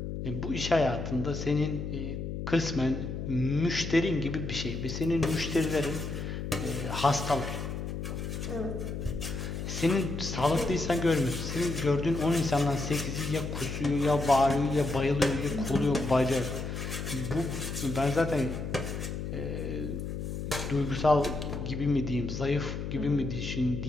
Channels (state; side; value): noise; left; hum, 5 dB below the sound